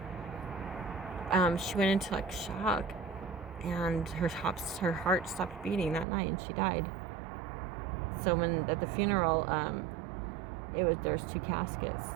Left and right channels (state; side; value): drops out; left; at 6.1 s